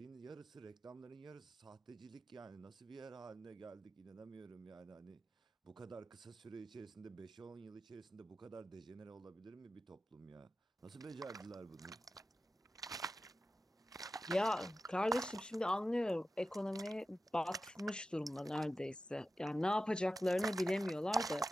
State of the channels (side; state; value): both; normal; correlation 0.93